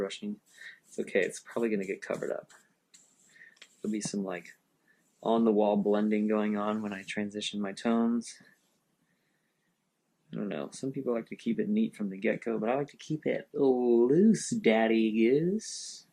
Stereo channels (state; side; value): identical; both; correlation 1.00